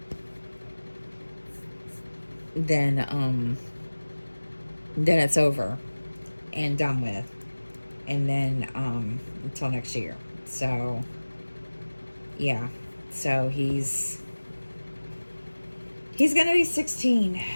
then it's over and done with, and then until next year. So yeah, so he's gonna be 16.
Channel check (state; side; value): inverted; both; correlation -1.00